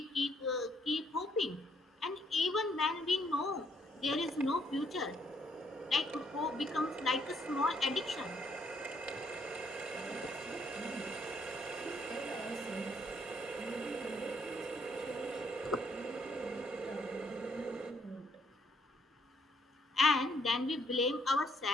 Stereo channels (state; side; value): normal; both; correlation 0.70